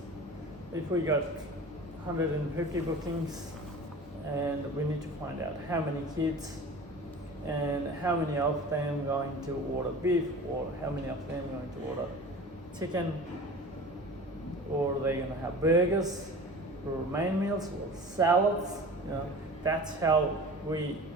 If we got 150 bookings and we need to find out how many kids and how many of them going to order beef, or how many of them going to order chicken, or they're going to have burgers or main meals or salads. You know, that's how we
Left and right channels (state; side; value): normal; both; correlation 0.38